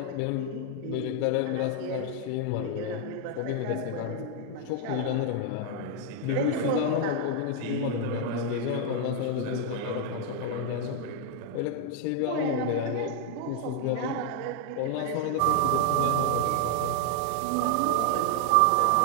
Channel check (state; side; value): different; both; correlation 0.00